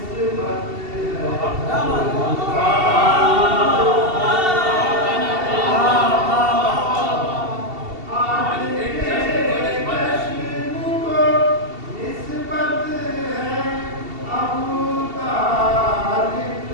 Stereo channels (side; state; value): left; late; 2.7 ms